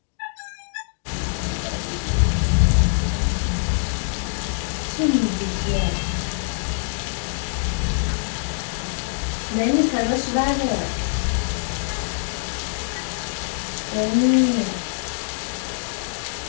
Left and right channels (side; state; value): right; silent; digital silence